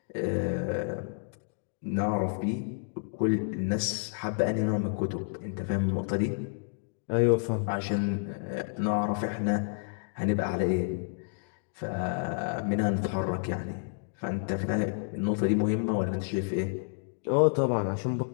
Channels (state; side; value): silent; right; digital silence